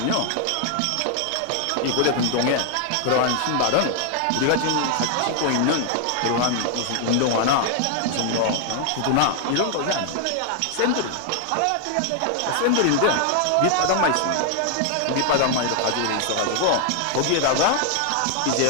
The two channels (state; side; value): different; both; correlation 0.00